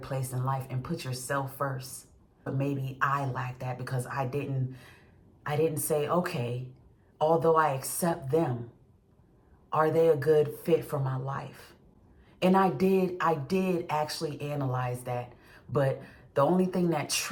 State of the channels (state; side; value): identical; both; correlation 1.00